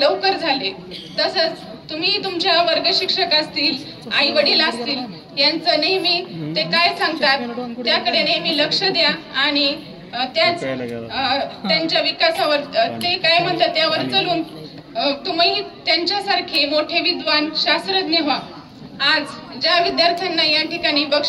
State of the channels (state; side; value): identical; both; correlation 1.00